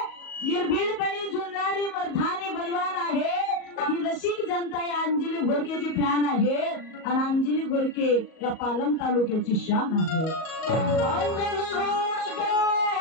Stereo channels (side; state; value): right; late; 38 ms